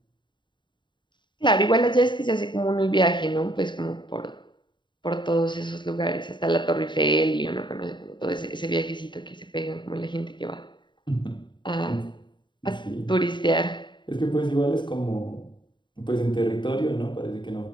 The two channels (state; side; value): late; right; 0.23 ms